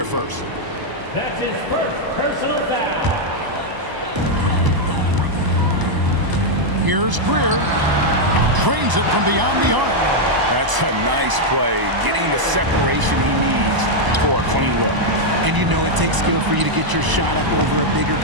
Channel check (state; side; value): late; left; 1.0 ms